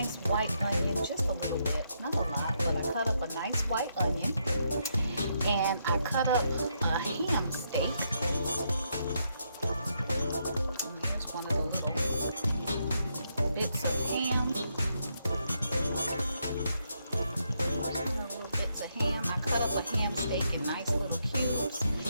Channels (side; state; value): both; inverted; correlation -0.78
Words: white onion, just a little bit, not a lot, but I cut up a nice white onion, and I cut up a ham steak. And here's one of the little bits of ham. Little bits of ham. I cut up a ham steak in nice little cubes,